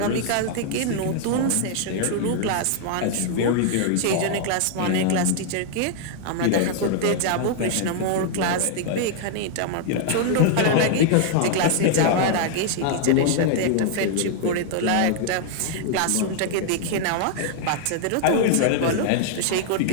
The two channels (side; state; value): both; different; correlation -0.01